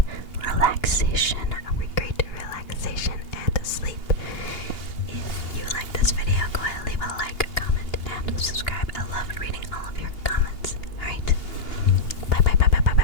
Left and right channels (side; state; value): right; late; 2.9 ms